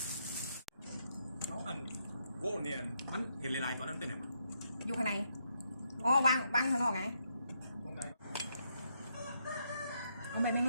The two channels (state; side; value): inverted; both; correlation -0.78